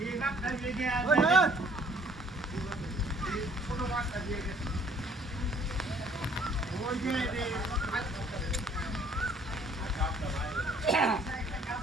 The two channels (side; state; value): both; normal; correlation 0.59